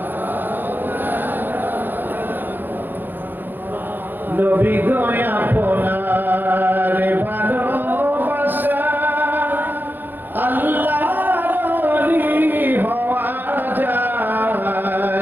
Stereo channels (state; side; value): late; left; 0.092 ms